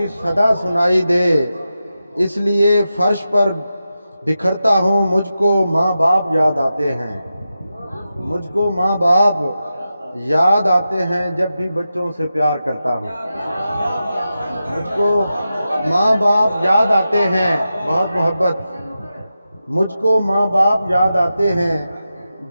सदा सुनाई दे, इसलिए फर्श पर बिखरता हूँ। मुझको माँ बाप याद आते हैं, मुझको माँ बाप याद आते हैं, जब भी बच्चों से प्यार करता हूँ। मुझको माँ बाप याद आते हैं, बहुत मोहब्बत। मुझको माँ बाप याद आते हैं,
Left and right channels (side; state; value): both; inverted; correlation -0.91